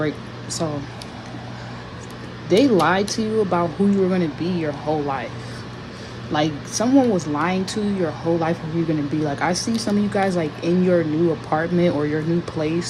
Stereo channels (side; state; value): both; identical; correlation 1.00